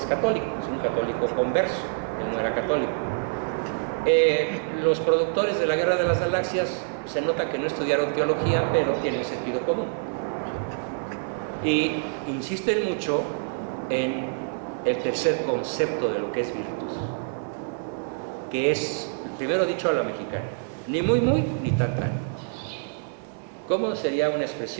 católico, es un católico converso, él no era católico. Los productores de La Guerra de las Galaxias se nota que no estudiaron teología, pero tienen sentido común. Y insisten mucho en el tercer concepto de lo que es virtud, que es, primero dicho a la mexicana, ni muy muy, ni tan tan. ¿Cómo sería una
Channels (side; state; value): left; silent; digital silence